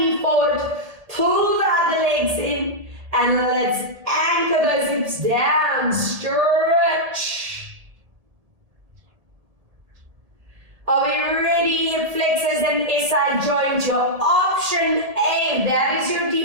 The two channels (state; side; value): late; left; 1.7 ms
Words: forward, pull the other legs in, and let's anchor those hips down, stretch. Are we ready? Hip flexors and SI joint, your option A. That is your